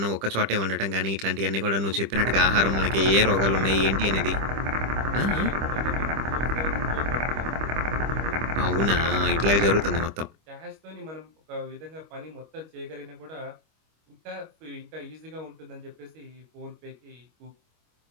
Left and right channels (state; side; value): late; left; 25 ms